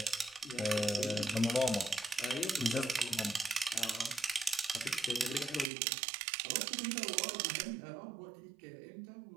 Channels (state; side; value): drops out; left; at 5.7 s